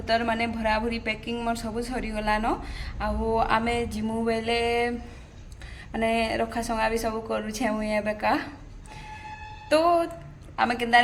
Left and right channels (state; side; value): identical; both; correlation 1.00